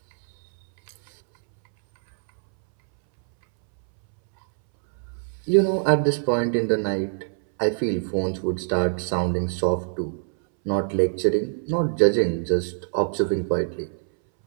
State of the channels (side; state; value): left; silent; 63 dB below the other